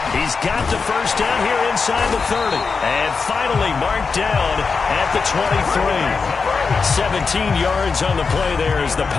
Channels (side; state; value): right; quieter; 4.9 dB